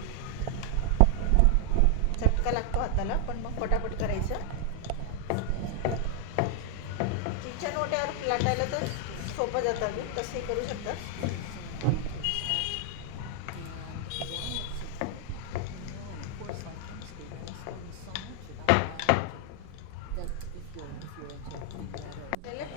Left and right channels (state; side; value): different; both; correlation 0.00